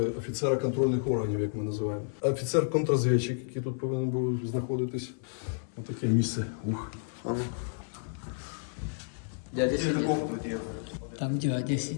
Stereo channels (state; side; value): silent; right; 57 dB below the other